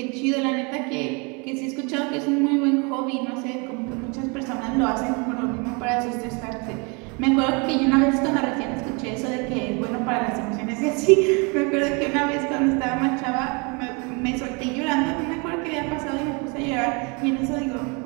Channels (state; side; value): quieter; left; 31.6 dB